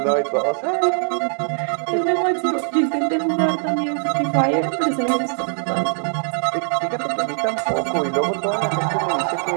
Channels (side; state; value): left; silent; digital silence